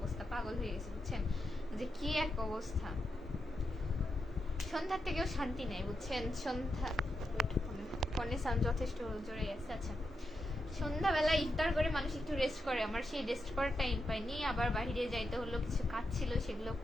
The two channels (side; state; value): both; normal; correlation 0.86